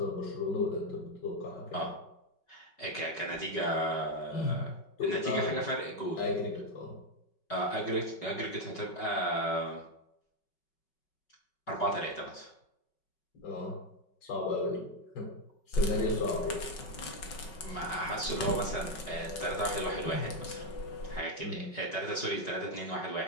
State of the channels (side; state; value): right; late; 5.3 ms